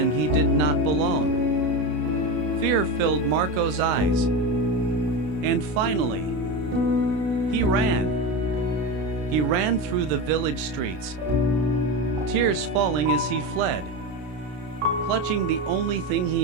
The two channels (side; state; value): left; late; 33 ms